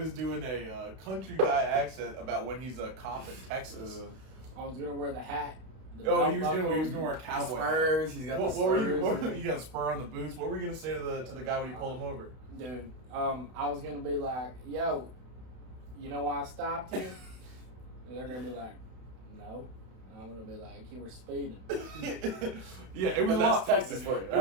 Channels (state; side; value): late; left; 32 ms